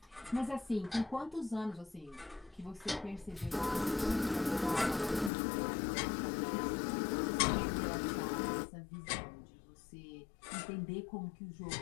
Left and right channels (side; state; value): right; drops out; at 5.3 s